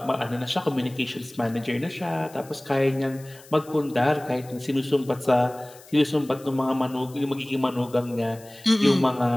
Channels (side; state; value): left; noise; hiss, 22 dB below the sound